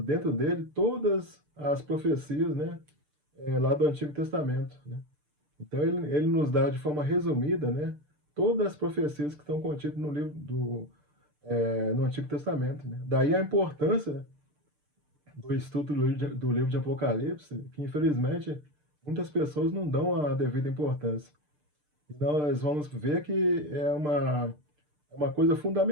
dentro dele todas as profecias, né, lá do Antigo Testamento, né? Então ele nos dá de forma resumida, né, todas as profecias que estão contidas no livro no Antigo Testamento, né? Daí a importância do estudo do livro de Apocalipse, que infelizmente muitas pessoas não dão a devida importância. E nós vamos ver que é uma coisa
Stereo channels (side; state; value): left; late; 6.6 ms